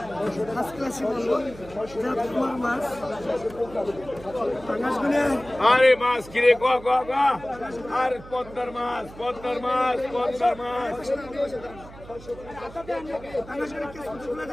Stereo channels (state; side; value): noise; right; hum, 18 dB below the sound